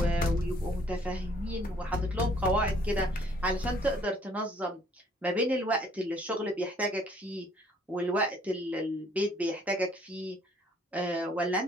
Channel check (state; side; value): normal; both; correlation 0.62